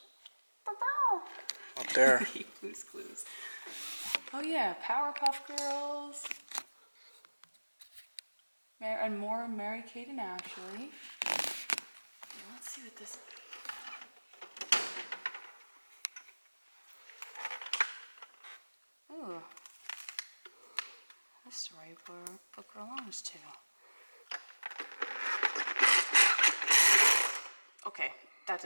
up there. Blue's Clues. Oh yeah, Powerpuff Girls. And more Mary Kate and Ashley. Yeah, let's see what this. Ooh. This storybook book belongs to. Okay, that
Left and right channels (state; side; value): inverted; both; correlation -1.00